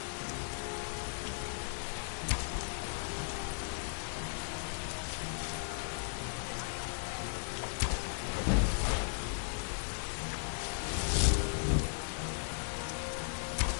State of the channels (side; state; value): right; silent; digital silence